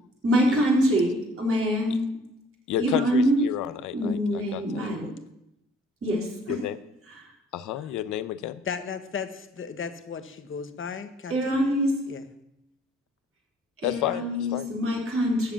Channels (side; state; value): both; normal; correlation 0.56